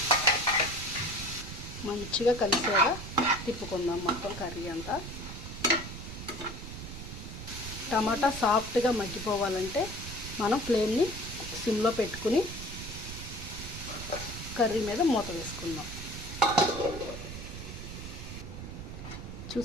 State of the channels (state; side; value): noise; right; rumble, 9 dB below the sound